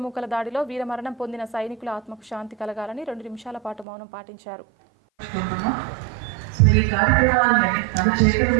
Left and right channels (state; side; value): drops out; left; at 3.9 s